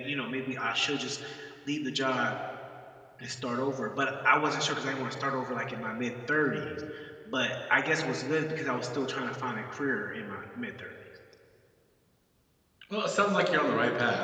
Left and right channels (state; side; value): identical; both; correlation 1.00